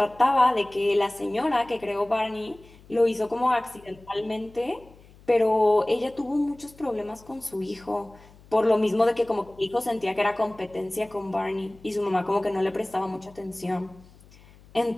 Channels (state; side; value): noise; left; hum, 25 dB below the sound